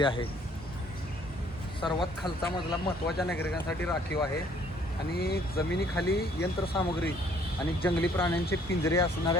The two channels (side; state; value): both; normal; correlation 0.61